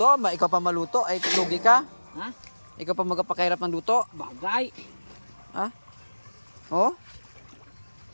Ikaw pa maluto. Ay, lugi ka. Ha? Ikaw pa magpakahirap ng luto. Bagay. Ha? O?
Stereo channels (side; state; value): both; inverted; correlation -1.00